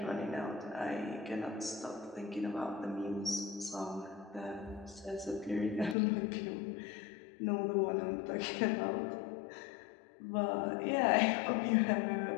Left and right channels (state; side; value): drops out; right; at 6.0 s